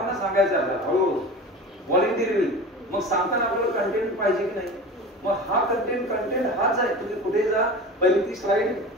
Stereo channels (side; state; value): both; normal; correlation 0.34